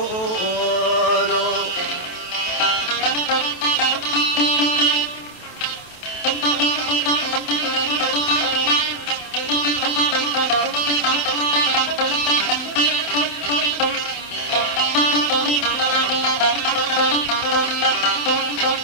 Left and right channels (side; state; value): right; late; 28 ms